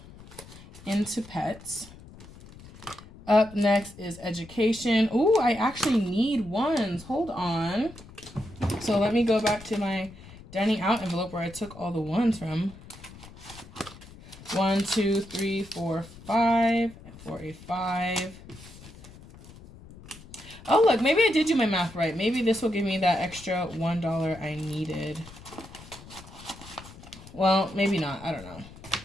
into Pets. Up next is education. Ooh, I actually need ones. Hold on. So let me go back to my dining out envelope where I took all the ones from. 1, 2, 3, 4, 5 for a 5. Oh, look, maybe I did do my math right. Maybe this will give me that extra $1 I needed. Well, maybe not. I don't know.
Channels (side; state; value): left; noise; rumble, 19 dB below the sound